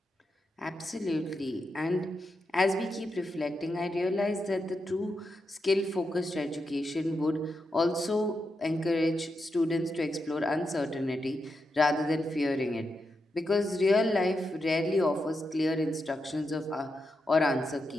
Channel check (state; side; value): normal; both; correlation 0.86